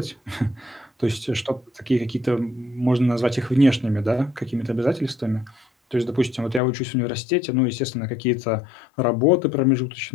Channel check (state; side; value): drops out; right; at 6.6 s